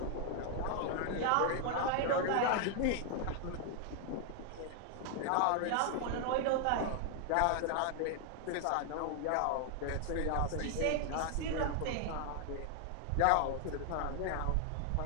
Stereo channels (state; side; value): different; both; correlation 0.00